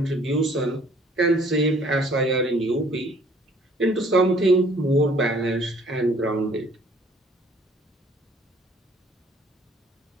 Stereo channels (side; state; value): both; normal; correlation 0.58